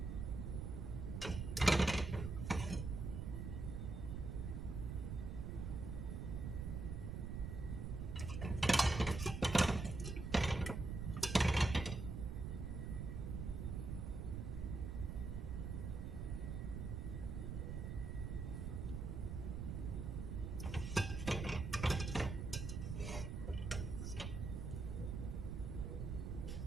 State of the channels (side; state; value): right; noise; rumble, 3 dB below the sound